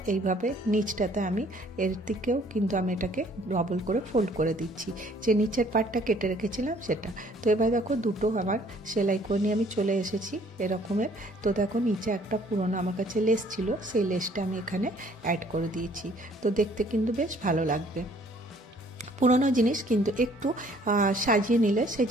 এইভাবে নিচটাতে আমি এর দিকেও কিন্তু আমি এটাকে ডবল করে ফোল্ড করে দিচ্ছি, যে নিচের পার্টটা কেটে রেখেছিলাম সেটা। তো এবার দেখো দুটো আমার সেলাই করে নিয়ে আমি চলে এসেছি এরকমের। তো দেখো নিচে একটা পুরনো আমার কাছে লেস ছিল, সেই লেসটা আমি এখানে অ্যাড করে দিয়েছি। তো দেখতে কিন্তু বেশ ভালো লাগবে। পুরনো জিনিস কিন্তু একটু সাজিয়ে নিলে সেই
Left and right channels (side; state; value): both; normal; correlation 0.59